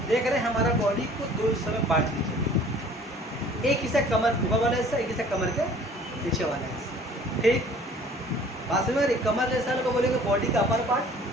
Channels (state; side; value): normal; both; correlation 0.51